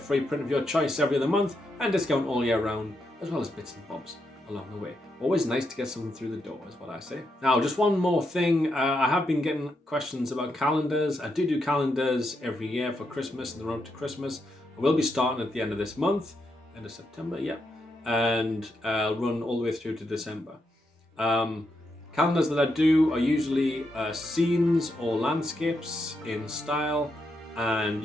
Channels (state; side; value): normal; both; correlation 0.82